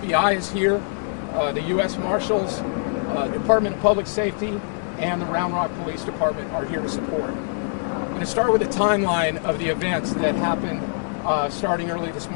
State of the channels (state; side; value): silent; right; digital silence